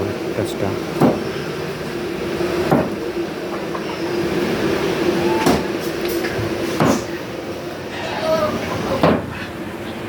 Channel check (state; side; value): identical; both; correlation 1.00